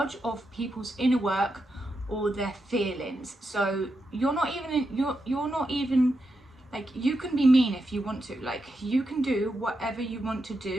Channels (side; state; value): both; normal; correlation 0.86